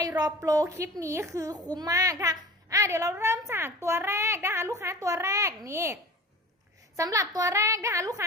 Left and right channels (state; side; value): normal; both; correlation 0.38